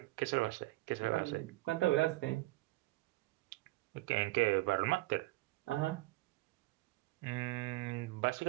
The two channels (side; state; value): left; quieter; 20.1 dB